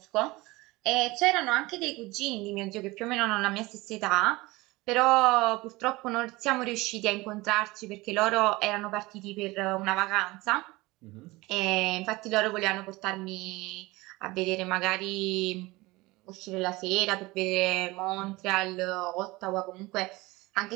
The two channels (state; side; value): quieter; left; 21.6 dB